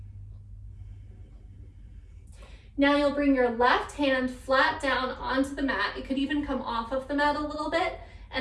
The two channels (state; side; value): identical; both; correlation 1.00